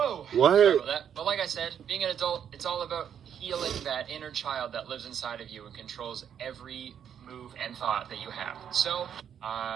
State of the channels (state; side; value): quieter; left; 8.7 dB